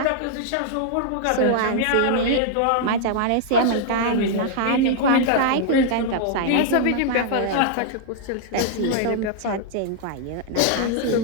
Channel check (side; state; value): both; different; correlation -0.01